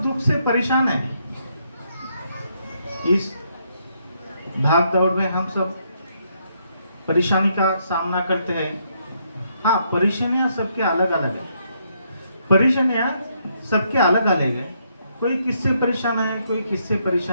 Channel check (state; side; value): inverted; both; correlation -0.74